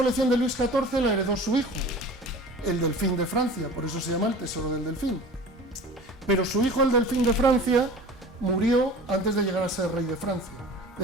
de Luis XIV la heredó su hijo, el delfín de Francia, por eso se llama el tesoro del delfín. Pero su hijo, el delfín de Francia, murió antes de llegar a ser rey de Francia,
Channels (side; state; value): both; normal; correlation 0.40